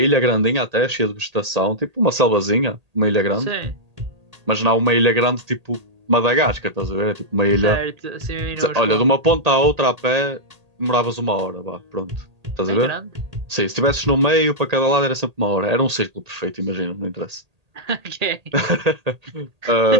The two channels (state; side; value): late; left; 1.8 ms